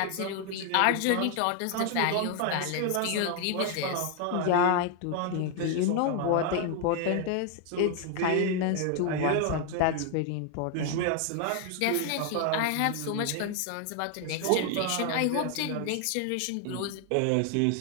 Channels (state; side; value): different; both; correlation 0.00